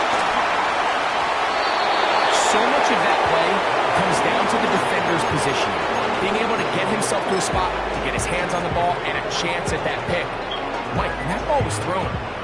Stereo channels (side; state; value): both; identical; correlation 1.00